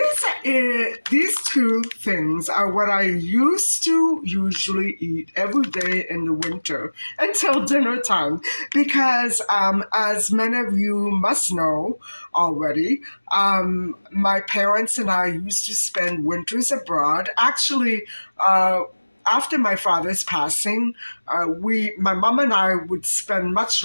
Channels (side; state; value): both; inverted; correlation -1.00